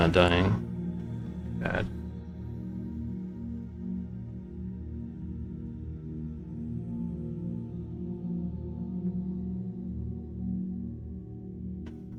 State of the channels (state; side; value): identical; both; correlation 1.00